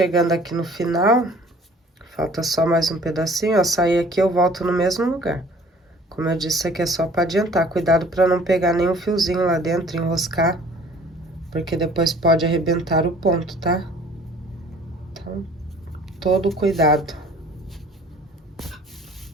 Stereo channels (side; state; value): both; normal; correlation 0.52